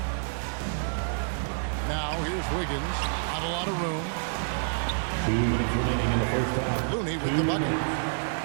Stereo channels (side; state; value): left; silent; digital silence